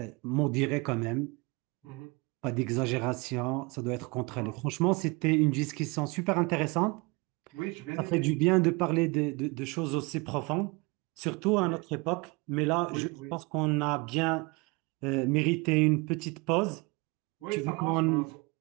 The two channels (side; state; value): left; quieter; 27.2 dB